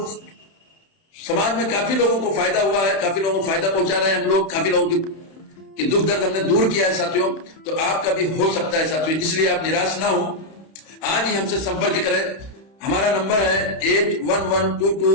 समाज में काफी लोगों को फायदा हुआ है, काफी लोगों को फायदा पहुंचा रहे हैं हम लोग, काफी लोगों की दुख दर्द हमने दूर किया है साथियों। तो आपका भी हो सकता है साथियों, इसलिए आप निराश ना हो, आज ही हमसे संपर्क करें। हमारा नंबर है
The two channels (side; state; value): right; late; 31 ms